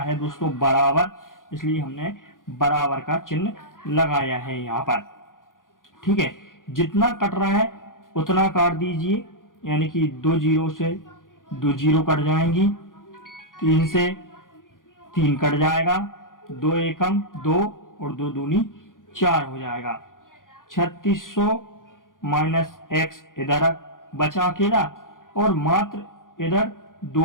है दोस्तों बराबर, इसलिए हमने बराबर का चिन्ह लगाया है यहाँ पर, ठीक है। जितना कट रहा है उतना काट दीजिए, यानी कि 2 जीरो से 2 जीरो कट जाएंगी, 3 से 3 कट जाएगा, 2 एकम 2 और 2 दूनी 4 हो जाएगा। 3600 माइनस x इधर बचा अकेला, और मात्र इधर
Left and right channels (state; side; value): late; right; 0.89 ms